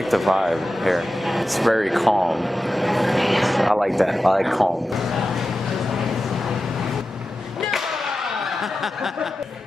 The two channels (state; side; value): normal; both; correlation 0.92